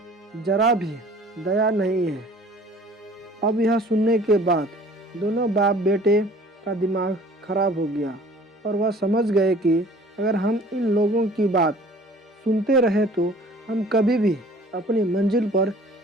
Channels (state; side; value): normal; both; correlation 0.50